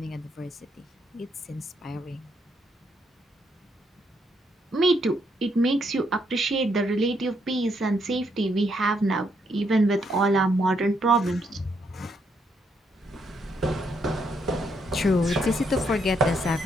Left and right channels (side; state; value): both; normal; correlation 0.75